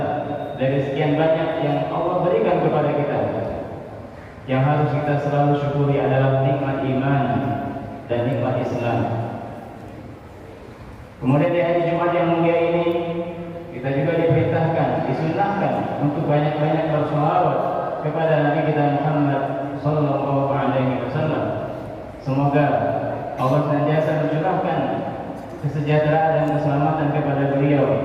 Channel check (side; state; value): both; identical; correlation 1.00